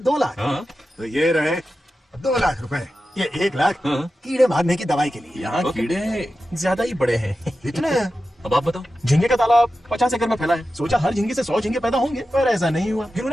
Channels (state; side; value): normal; both; correlation 0.92